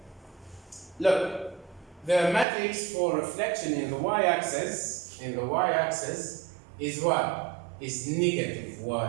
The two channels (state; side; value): drops out; left; at 2.5 s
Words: Look, the matrix for reflection in the y-axis is what? Is negative